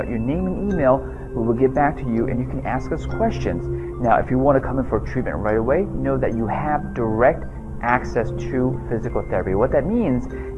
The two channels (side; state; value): both; identical; correlation 1.00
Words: your name and email. We will get back to you and you can ask us questions. Now, if you want to come in for treatment right away, know that you have direct access to physical therapy. What that means